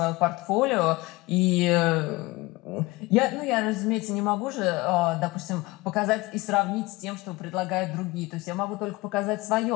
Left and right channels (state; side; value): quieter; right; 22.0 dB